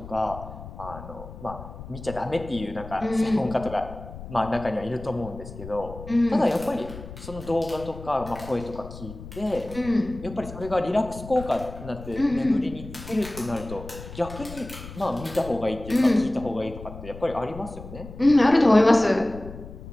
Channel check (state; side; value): noise; left; rumble, 13 dB below the sound